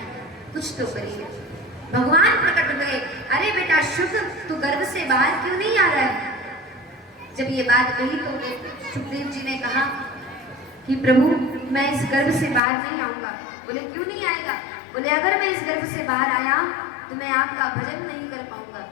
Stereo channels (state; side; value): drops out; right; at 12.6 s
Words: कुछ तो करिए। भगवान प्रकट हुए, अरे बेटा शुभ तू गर्भ से बाहर क्यों नहीं आ रहा है। जब ये बात कही तो सुखदेव जी ने कहा कि प्रभु मैं इस गर्भ से बाहर नहीं आऊंगा। बोले क्यों नहीं आएगा। बोले अगर मैं इस गर्भ से बाहर आया तो मैं आपका भजन नहीं कर पाऊंगा।